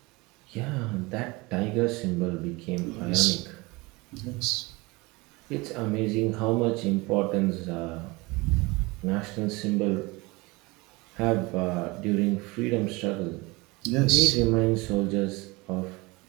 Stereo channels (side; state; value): left; quieter; 24.1 dB